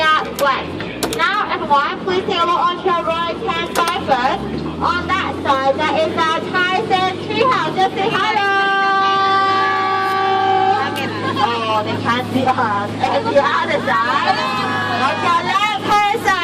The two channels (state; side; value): identical; both; correlation 1.00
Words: wet. Now everyone, please take a look on your right hand side first. On that side, that is our Tyson treehouse. Just say hello. Oh, they can't see us. And the other side, on your left hand